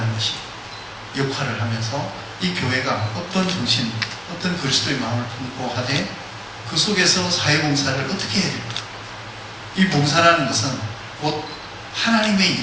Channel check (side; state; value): both; identical; correlation 1.00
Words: 것이 역할을 하면서 이 교회가 어떤 정신, 어떤 그리스도의 마음을 품고 하되 그 속에서 사회봉사를 어떻게 해야 될까? 이 봉사라는 것은 곧 하나님의